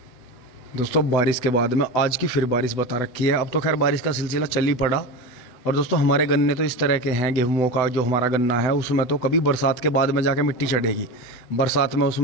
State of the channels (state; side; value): late; right; 8.1 ms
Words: दोस्तों, बारिश के बाद में आज की फिर बारिश बता रखी है। अब तो खैर बारिश का सिलसिला चल ही पड़ा। और दोस्तों, हमारे गन्ने तो इस तरह के हैं, गेहूं का जो हमारा गन्ना है उसमें तो कभी बरसात के बाद में जाके मिट्टी चढ़ेगी। बरसात में